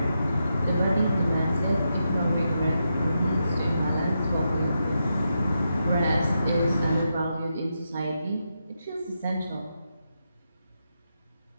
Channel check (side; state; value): both; inverted; correlation -0.85